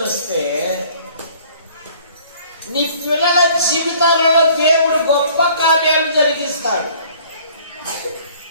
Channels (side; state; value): both; inverted; correlation -0.55